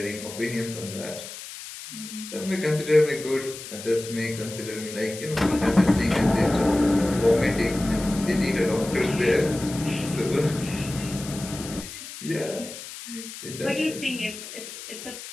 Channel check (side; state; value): left; noise; hiss, 12 dB below the sound